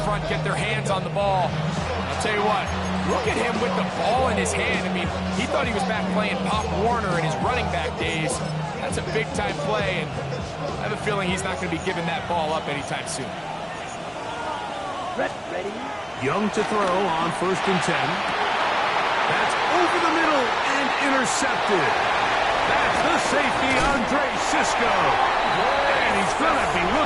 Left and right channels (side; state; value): both; identical; correlation 1.00